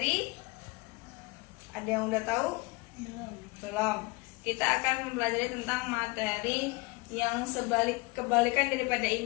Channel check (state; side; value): quieter; right; 25.4 dB